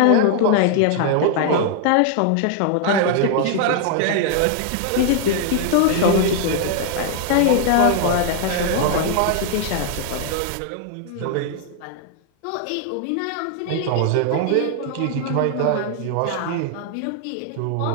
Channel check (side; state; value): both; different; correlation 0.00